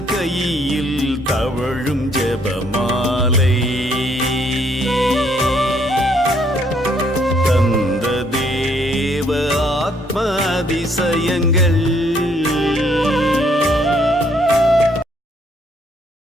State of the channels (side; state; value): both; normal; correlation 0.67